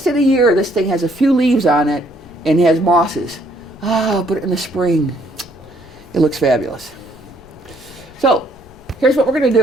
of the year, this thing has a few leaves on it and has mosses. But in the spring, it looks fabulous. So here's what we're going to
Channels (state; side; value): noise; left; rumble, 24 dB below the sound